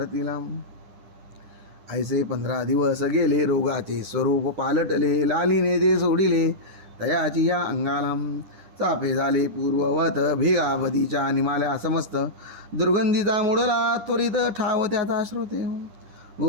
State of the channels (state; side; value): late; left; 10 ms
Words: ऐसे 15 दिवस गेले रोगाचे स्वरूप पालटले. लालीने ते सोडिले तयाची या अंगाला. चापे झाले पूर्ववत भेगावधीच्या निमाल्या समस्त. दुर्गंधीचा मुडला त्वरित ठाव त्याचा श्रोते.